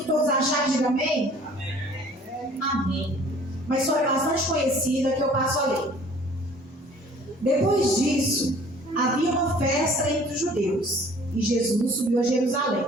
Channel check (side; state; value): both; normal; correlation 0.52